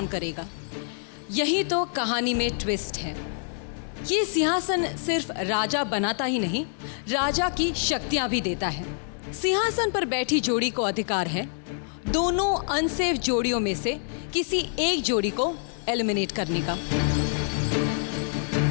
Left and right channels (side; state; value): right; silent; digital silence